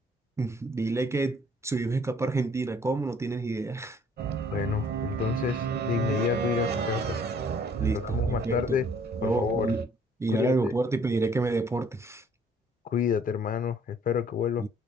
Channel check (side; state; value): both; normal; correlation 0.59